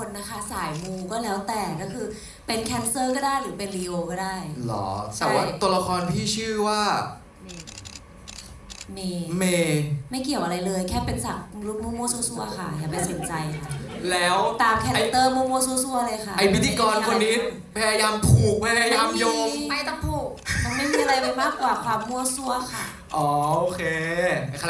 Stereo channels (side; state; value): both; identical; correlation 1.00